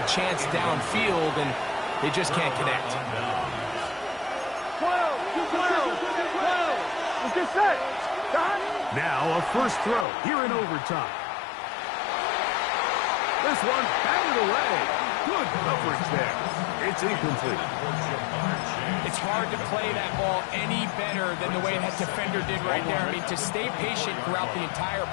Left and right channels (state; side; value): drops out; right; at 10.1 s